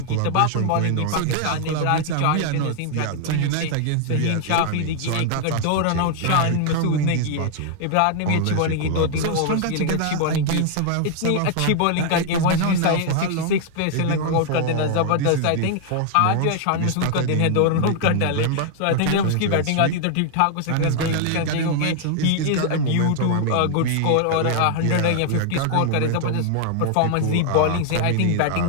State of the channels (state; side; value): different; both; correlation 0.00